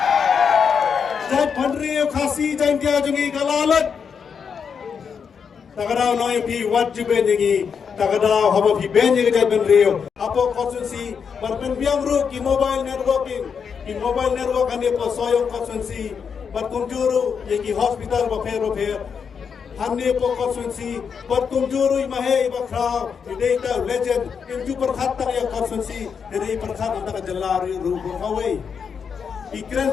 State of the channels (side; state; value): right; quieter; 6.5 dB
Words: Jai Pandriyo Khasi Jai Kya Jungi Kalalat Takadaw no pi wajib bengi takadaw haba pi bengi Jai Pandriyo Apo konsensi berpen biang ru ki mobile networking ki mobile network ane po soyong konsensi berkunjuru ye ki hospital ba Hanne po konsensi berkunjuru imahe bakra data legend inju perkhatan ya konsensi dari perkhatan antara jelari ru kawai ikran